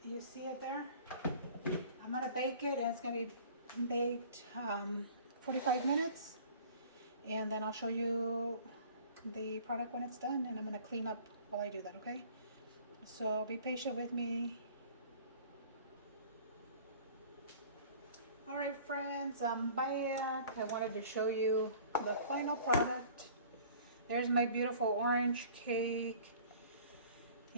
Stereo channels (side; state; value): both; inverted; correlation -0.49